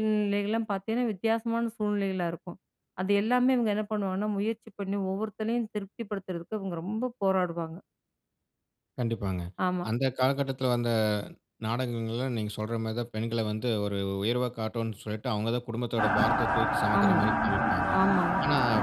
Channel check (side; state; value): both; identical; correlation 1.00